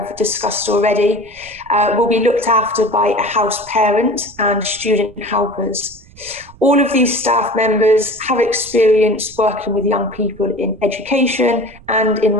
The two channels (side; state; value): right; noise; rumble, 23 dB below the sound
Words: discussed already, will be looked after by a house parent and student helpers. All of these staff members have experience working with young people in education and in